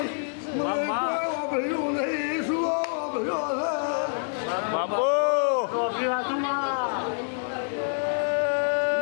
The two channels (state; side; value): silent; right; digital silence